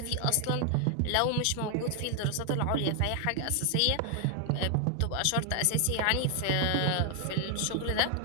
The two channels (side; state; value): both; different; correlation 0.00